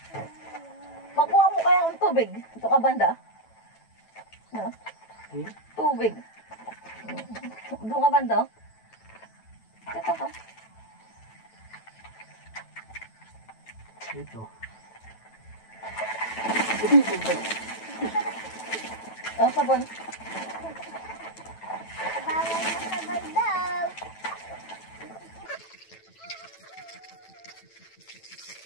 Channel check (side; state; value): right; late; 9.1 ms